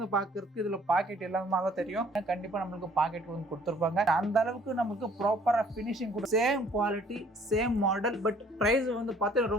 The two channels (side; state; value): both; normal; correlation 0.58